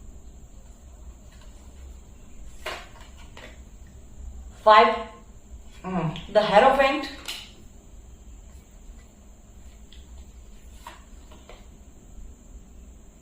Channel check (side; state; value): both; identical; correlation 1.00